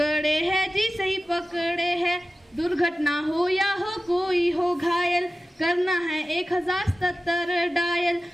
हैं जी, सही पकड़े हैं। दुर्घटना हो या हो कोई हो घायल, करना है 1077 डायल।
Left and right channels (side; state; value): both; normal; correlation 0.95